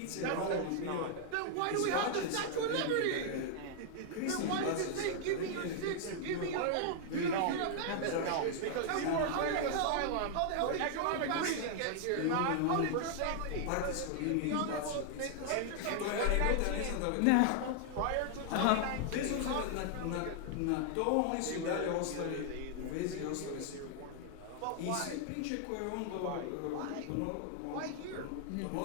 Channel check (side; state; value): both; different; correlation 0.00